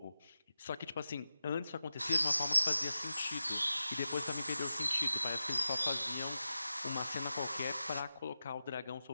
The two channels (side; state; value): both; inverted; correlation -0.92